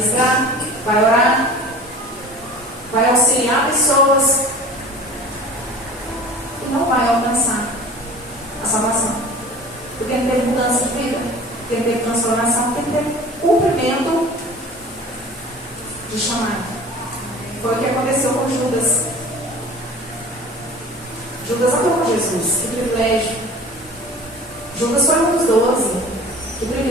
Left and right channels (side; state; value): both; normal; correlation 0.42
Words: vai orar, vai auxiliar pessoas e não vai alcançar a salvação. Porque não teve mudança de vida, porque não teve transformação, porque não teve cumprimento de chamado. Foi o que aconteceu com Judas. Judas amou Jesus, que privilégio. Judas foi um dos 12, que